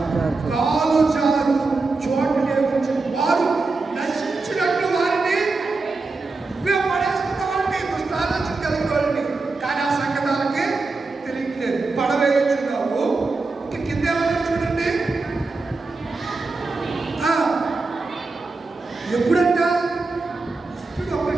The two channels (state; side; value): quieter; left; 3.8 dB